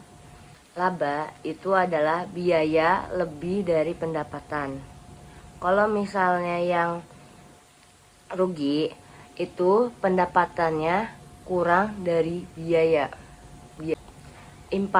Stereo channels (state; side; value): identical; both; correlation 1.00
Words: laba itu adalah biaya lebih dari pendapatan. Kalau misalnya yang rugi itu pendapatannya kurang dari biaya.